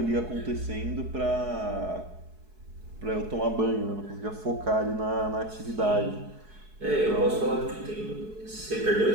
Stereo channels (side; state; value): left; late; 4.7 ms